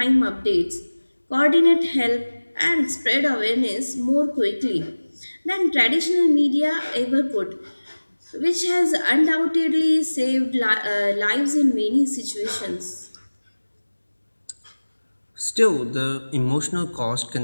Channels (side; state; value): both; inverted; correlation -1.00